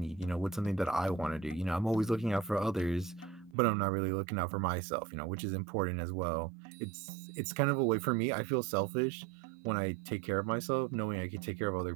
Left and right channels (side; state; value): left; drops out; at 3.6 s